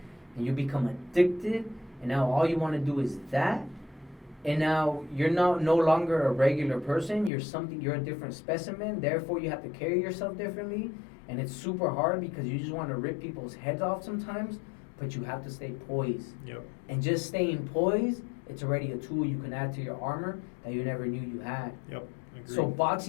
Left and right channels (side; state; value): right; drops out; at 7.3 s